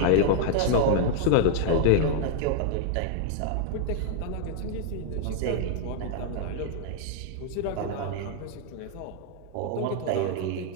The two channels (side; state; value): both; different; correlation 0.00